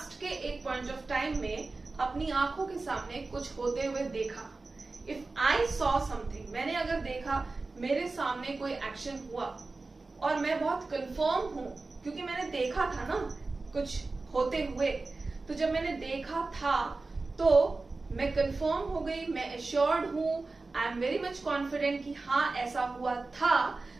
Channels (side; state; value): left; quieter; 3.6 dB